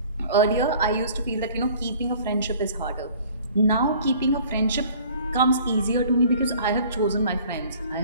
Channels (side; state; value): both; inverted; correlation -0.50